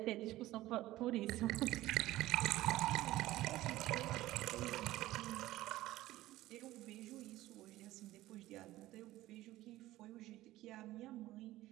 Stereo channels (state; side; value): quieter; left; 16.3 dB